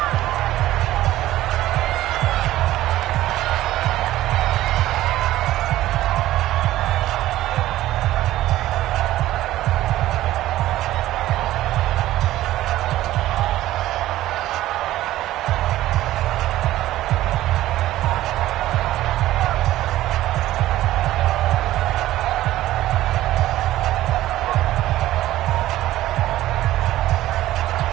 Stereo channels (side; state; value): left; quieter; 14.9 dB